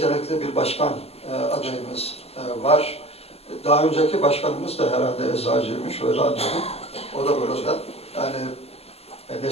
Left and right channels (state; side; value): late; right; 0.29 ms